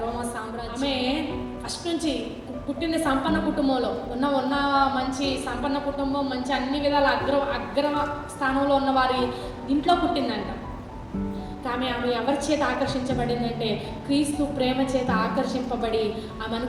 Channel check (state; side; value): identical; both; correlation 1.00